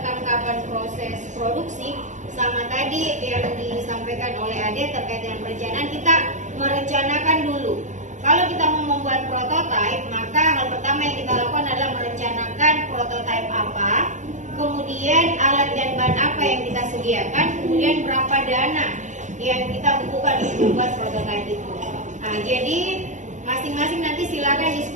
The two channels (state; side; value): late; left; 0.35 ms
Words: kapan proses produksi, sama tadi yang disampaikan oleh Ade terkait dengan perencanaan, kita merencanakan dulu. Kalau kita mau membuat prototipe, maka hal pertama yang kita lakukan adalah merencanakan prototipe apa, kemudian alat dan bahan apa yang kita sediakan, kemudian berapa dana yang kita butuhkan untuk membuat prototipe itu. Nah, jadi masing-masing nanti silakan